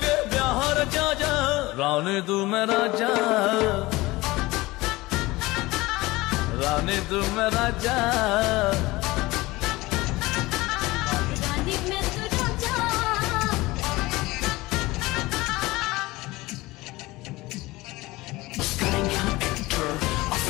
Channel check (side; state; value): right; quieter; 20.4 dB